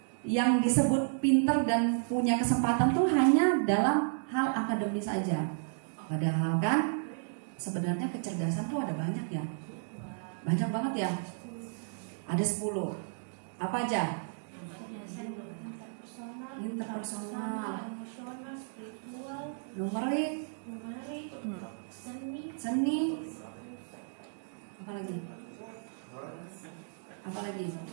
yang disebut pintar dan punya kesempatan tuh hanya dalam hal akademis saja. Padahal kan sebenarnya kecerdasan tuh ada banyak ya. Banyak banget ya. Ada 10. Apa aja? Interpersonal, emosional, spiritual, numerik, seni, apa lagi?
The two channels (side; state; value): left; silent; digital silence